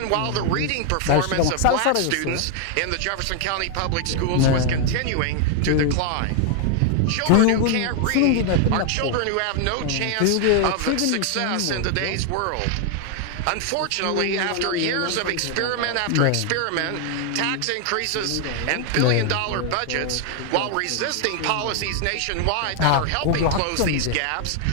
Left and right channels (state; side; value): different; both; correlation 0.00